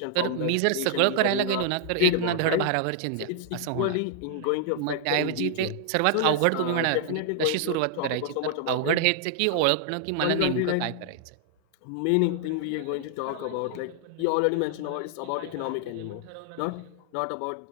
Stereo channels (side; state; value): both; different; correlation -0.01